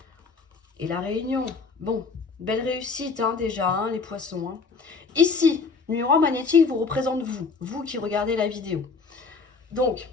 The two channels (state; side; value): quieter; right; 4.6 dB